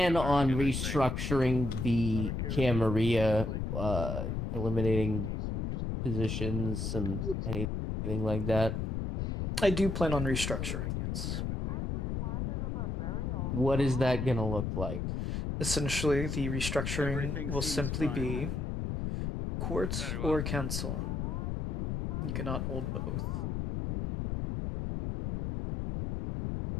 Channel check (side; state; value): left; noise; rumble, 2 dB below the sound